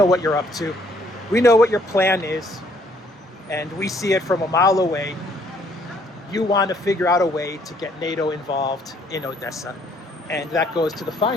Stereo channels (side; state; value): both; normal; correlation 0.64